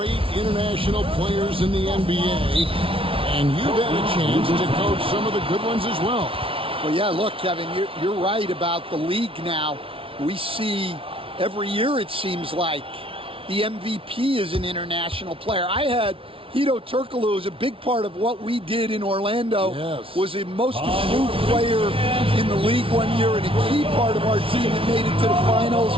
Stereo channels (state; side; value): late; left; 0.26 ms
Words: international players in the NBA. And you've had a chance to coach some of the good ones as well. Well, yeah, look, Kevin, you're right about the league now. We see every year, it seems like, the MVP is an international player. I had Hedo Turkoglu as a big part of what we did in Orlando. Yes. Was the most improved player in the league one year and a key part of our team that made it to the finals.